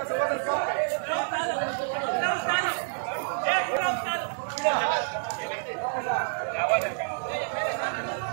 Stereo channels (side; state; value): left; silent; 59 dB below the other